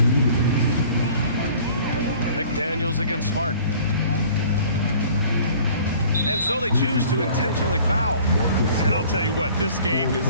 McDaniels against Smart. And so they choose to intentionally foul. And I'll tell you what, this game is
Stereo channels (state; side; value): inverted; both; correlation -0.50